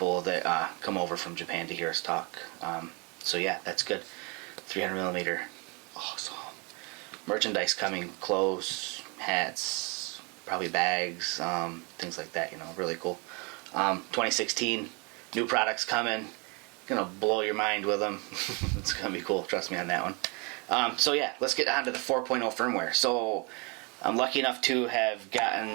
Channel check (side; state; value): left; quieter; 31.3 dB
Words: that come over from Japan to hear us talk. So yeah, that's good. 300 millimeter, awesome. Merchandise coming, clothes, hats, probably bags, things like that. Really cool. 2016, new products coming. Gonna blow your mind with them. It's gonna be cool. Trust me on that one. So yeah, let's get on to the 4.0 firmware. So I'm lucky enough to have